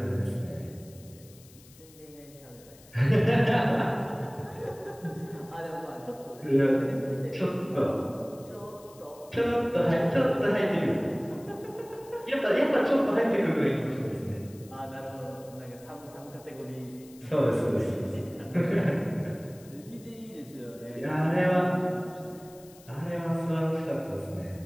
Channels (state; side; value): noise; left; hiss, 24 dB below the sound